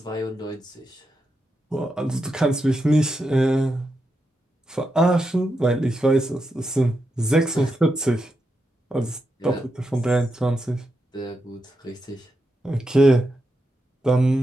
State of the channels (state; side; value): normal; both; correlation 0.86